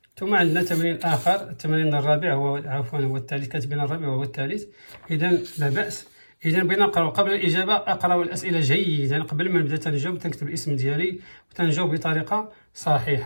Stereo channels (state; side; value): inverted; both; correlation -1.00